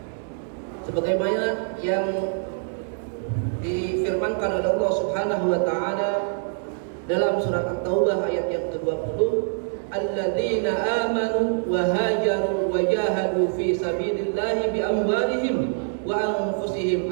Sebagaimana yang difirmankan oleh Allah Subhanahu wa taala dalam surat At-Taubah ayat yang ke-20, alladzina amanu wa hajaru wa jahadu fi sabilillahi bi amwalihim wa anfusihim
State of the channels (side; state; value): left; silent; digital silence